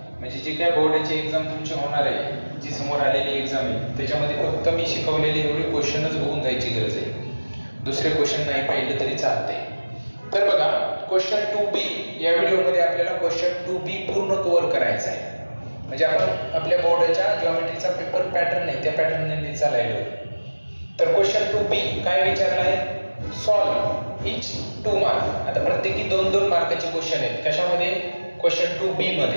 म्हणजे जे काय बोर्डाची एक्झाम तुमची होणार आहे, जी समोर आलेली एक्झाम आहे, त्याच्यामध्ये फक्त मी शिकवलेले एवढे क्वेश्चनच बघून जायची गरज आहे। दुसरे क्वेश्चन नाही पाहिले तरी चालते। तर बघा, क्वेश्चन 2B या व्हिडिओमध्ये आपल्याला क्वेश्चन 2B पूर्ण कव्हर करायचा आहे। म्हणजे आपण आपल्या बोर्डाच्या जिओमेट्रीचा पेपर पॅटर्न आहे, त्या पॅटर्नने चालायलो। तर क्वेश्चन 2B काय विचारला आहे? सॉल्व इच 2 मार्क। आता प्रत्येकी 2-2 मार्काचे क्वेश्चन आहेत। कशामध्ये? क्वेश्चन 2B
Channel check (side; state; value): both; inverted; correlation -1.00